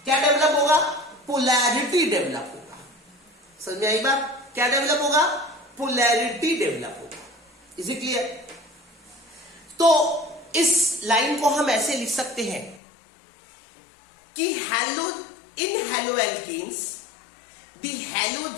क्या डेवलप होगा? पोलैरिटी डेवलप होगा। समझ में आई बात? क्या डेवलप होगा? पोलैरिटी डेवलप होगा। Is it clear? तो इस लाइन को हम ऐसे लिख सकते हैं कि in haloalkanes the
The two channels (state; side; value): drops out; right; at 12.8 s